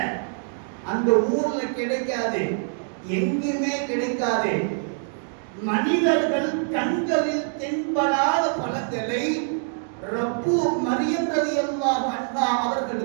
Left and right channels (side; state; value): left; silent; digital silence